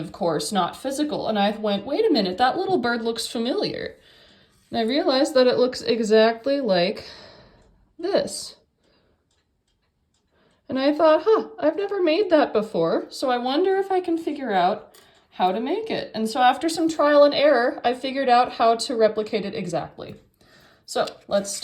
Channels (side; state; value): both; identical; correlation 1.00